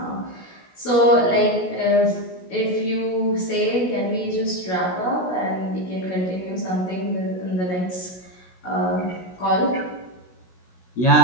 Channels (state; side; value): late; right; 16 ms